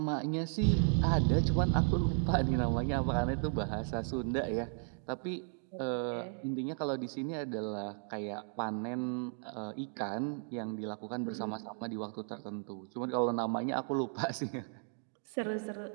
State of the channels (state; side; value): silent; left; 54 dB below the other